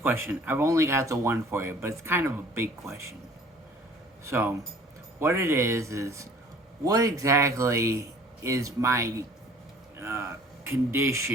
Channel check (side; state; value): both; normal; correlation 0.52